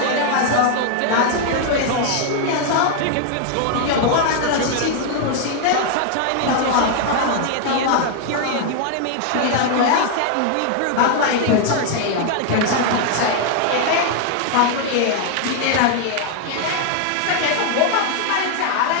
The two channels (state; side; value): different; both; correlation 0.00